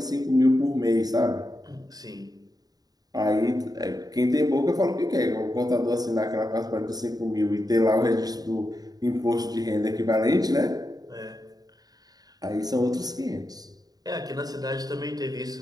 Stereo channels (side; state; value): left; late; 0.18 ms